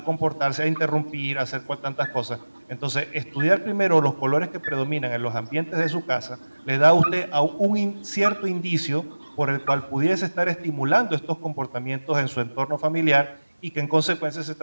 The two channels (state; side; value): inverted; both; correlation -1.00